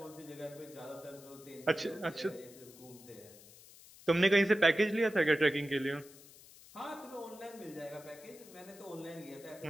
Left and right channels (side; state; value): left; noise; hiss, 21 dB below the sound